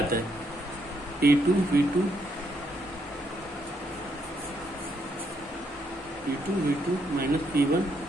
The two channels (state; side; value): normal; both; correlation 0.76